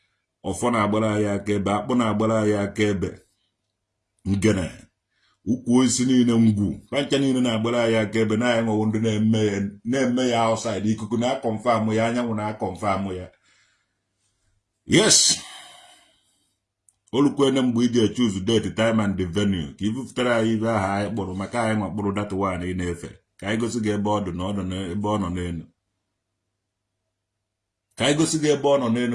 ọfọ na-agbara anyị aka ebe akpụ na-agbara anyị aka ebe ngene ukwu osisi niile ngwu pancha niile na-agbara anyị aka ebe na anyị nwewo ndị na-eme ya outside ikuku na-akọnfam ya anyanwụ na-akọnfam ya yes olukwene mgbe iji choose date time and the venue ka ibupụtara anyị ibe aha anyị kpụrụ maka anyị nwa kpụrụ data one ị na-efe ka anyị gosi gị ebe ọ dị na ebe ọ nọ n'elu ka anyị gosi gị ebe ọ nọ n'elu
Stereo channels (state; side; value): identical; both; correlation 1.00